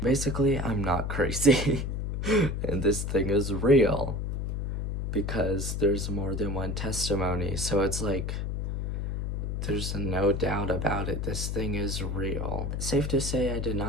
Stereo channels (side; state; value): left; noise; hum, 2 dB below the sound